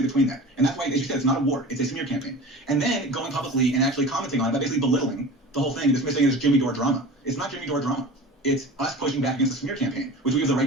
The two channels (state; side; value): normal; both; correlation 0.36